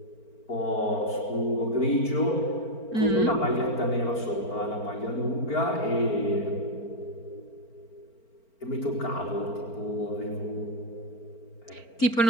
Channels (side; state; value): right; late; 4.4 ms